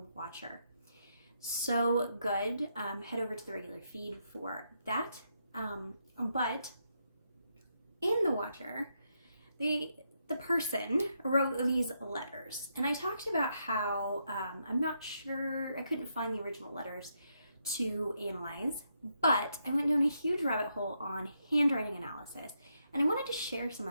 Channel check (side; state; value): both; inverted; correlation -0.80